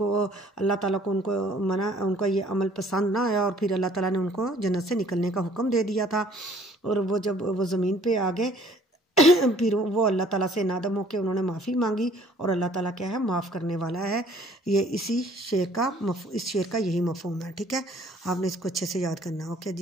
اللہ تعالیٰ کو ان کا یہ عمل پسند نہ آیا اور پھر اللہ تعالیٰ نے ان کو جنت سے نکلنے کا حکم دے دیا تھا، اور وہ جب وہ زمین پہ آ گئے پھر وہ اللہ تعالیٰ سے نادم ہو کے انہوں نے معافی مانگی، اور اللہ تعالیٰ کیا ہے، معاف کرنے والا ہے۔ یہ اس شعر کا یہی مفہوم ہے۔ ٹھیک ہے، آپ نے اس کو اچھے سے یاد کرنا ہے۔ اوکے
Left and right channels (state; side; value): normal; both; correlation 0.57